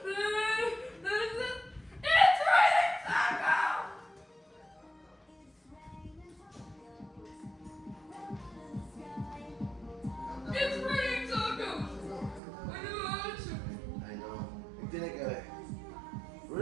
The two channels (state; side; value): drops out; left; at 12.4 s